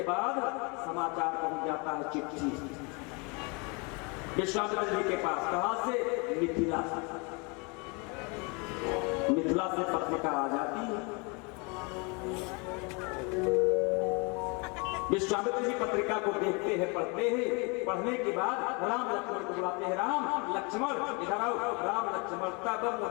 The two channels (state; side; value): quieter; right; 31.0 dB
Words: बाद समाचार पहुंच जाता है चिट्ठी विश्वामित्र जी के पास। कहां से? मिथिला से। मिथिला से पत्रिका आ जाती है। विश्वामित्र जी पत्रिका को देखते हैं, पढ़ते हैं। पढ़ने के बाद राम लक्ष्मण को बुलाते हैं। राम लक्ष्मण इधर आओ। राम लक्ष्मण तब